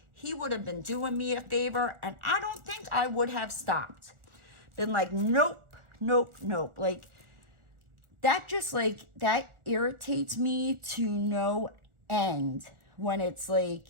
he would have been doing me a favor, and I don't think I would have stopped. Been like, nope, nope, nope. Like, that just, like, that irritates me to no end when it's like,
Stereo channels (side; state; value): left; late; 1.4 ms